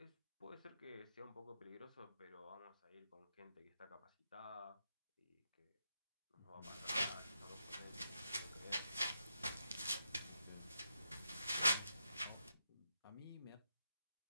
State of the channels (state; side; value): inverted; both; correlation -0.84